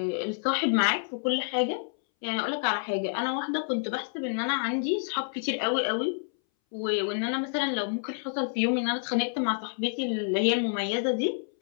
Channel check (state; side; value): silent; right; 59 dB below the other